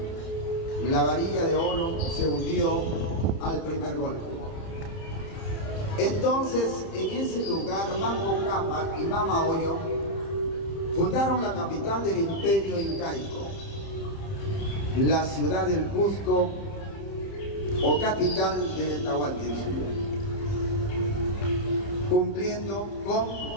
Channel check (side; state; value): right; late; 30 ms